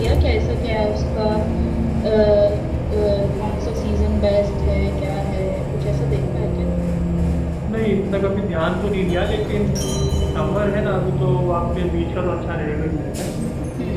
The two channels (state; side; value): identical; both; correlation 1.00